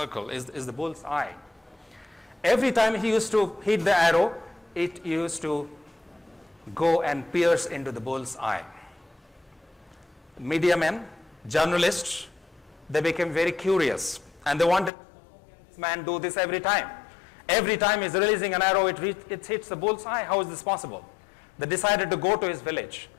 is the bullseye. Every time he used to hit the arrow, it used to go and pierce into the bull's eye. Media men, journalists, they became very curious and they wanted this man do this every time. Every time he's releasing an arrow, it hits the bull's eye. How is this possible? They decided to go to his village,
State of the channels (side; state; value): right; drops out; at 14.9 s